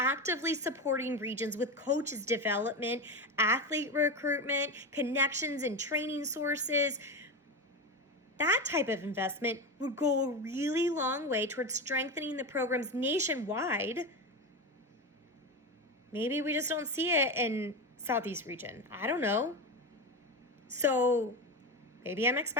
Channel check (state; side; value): normal; both; correlation 0.18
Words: supporting regions with coaches development, athlete recruitment, connections and training sources. That type of investment would go a really long way towards strengthening the programs nationwide. Maybe we just don't see it in Southeast region. I don't know. So maybe I'm